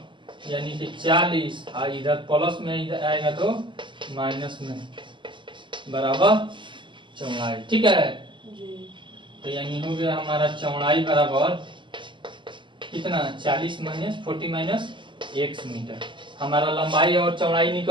यानी कि 40, और इधर प्लस में इधर आएगा तो माइनस में बराबर चौड़ाई, ठीक है। तो यानी हो गया हमारा चौड़ाई बराबर कितना 40 माइनस 40 माइनस x मीटर। हमारा लंबाई और चौड़ाई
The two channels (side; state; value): left; late; 0.24 ms